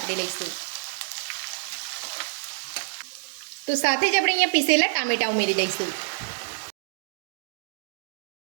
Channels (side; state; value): left; silent; digital silence